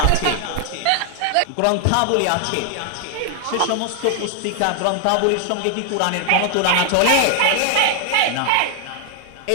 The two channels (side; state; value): both; different; correlation 0.00